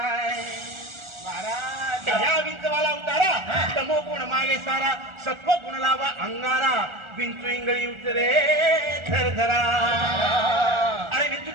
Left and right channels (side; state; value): left; late; 1.4 ms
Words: महाराज या विंचवाला उतारा तमोगुण मागे सारा सत्व गुण लावा अंगारा विंचू इंगळी उतरे धरधरा अरे विंचू